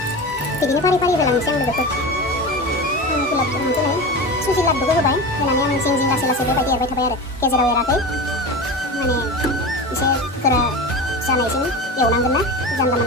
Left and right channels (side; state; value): both; normal; correlation 0.27